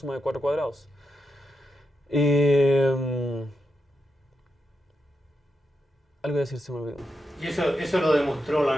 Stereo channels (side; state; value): both; normal; correlation 0.86